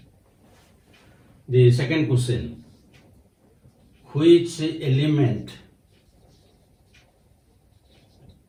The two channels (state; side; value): identical; both; correlation 1.00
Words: The second question, which element